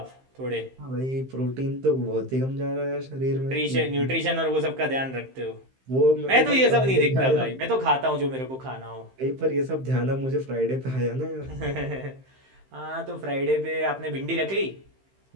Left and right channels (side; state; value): left; late; 15 ms